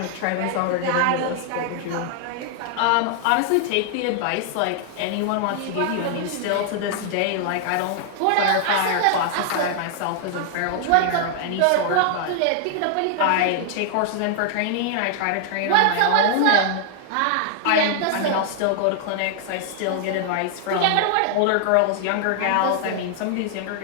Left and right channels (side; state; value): both; different; correlation 0.00